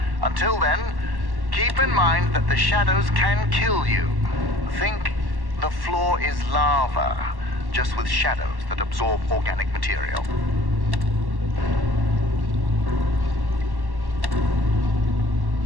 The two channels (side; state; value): left; late; 1.1 ms